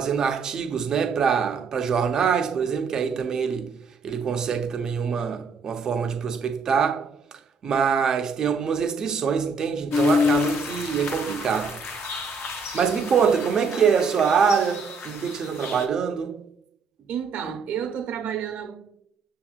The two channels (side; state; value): left; quieter; 4.7 dB